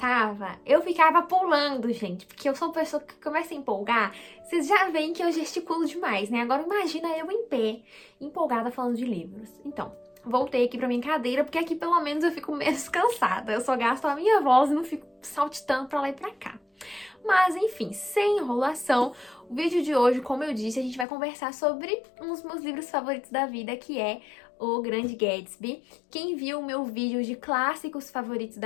eu ficava pulando, gente, porque eu sou uma pessoa que começa a empolgar. Vocês já veem que eu gesticulo demais, né? Agora imagina eu em pé, empolgada falando de livros. Então, voltei aqui pra minha cadeira, porque aqui pelo menos eu fico menos cansada. Eu só gasto a minha voz e não fico saltitando pra lá e pra cá. Mas enfim, sem enrolação, o vídeo de hoje, como eu disse, a gente vai conversar sobre um dos meus livros favoritos da vida, que é O Grande Gatsby. Quem viu o meu vídeo de clássicos favoritos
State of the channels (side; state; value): right; drops out; at 21.1 s